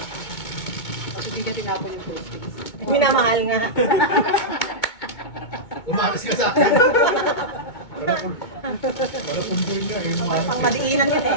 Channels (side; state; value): right; late; 2.2 ms